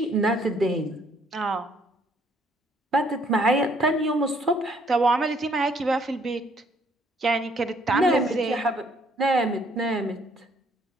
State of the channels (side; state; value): both; normal; correlation 0.65